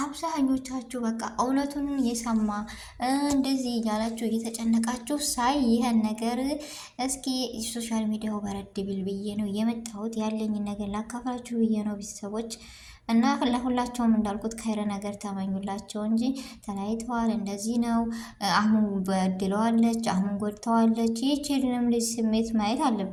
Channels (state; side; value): identical; both; correlation 1.00